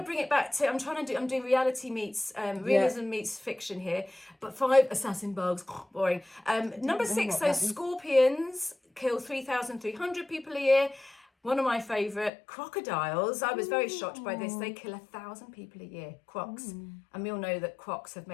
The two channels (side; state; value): right; drops out; at 12.3 s